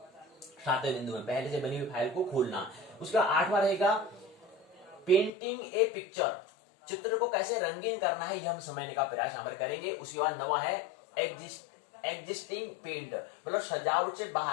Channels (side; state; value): right; drops out; at 5.3 s